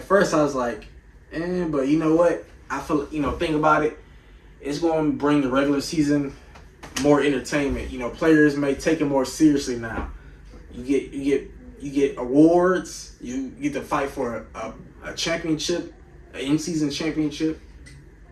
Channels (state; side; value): identical; both; correlation 1.00